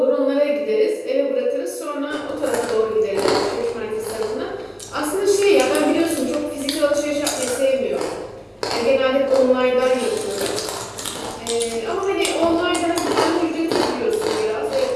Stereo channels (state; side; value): identical; both; correlation 1.00